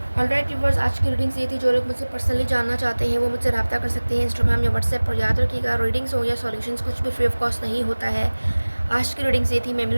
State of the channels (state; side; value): inverted; both; correlation -1.00